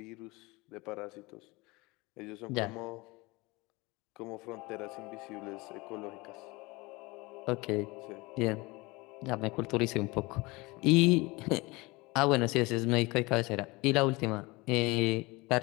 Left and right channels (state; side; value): quieter; right; 23.6 dB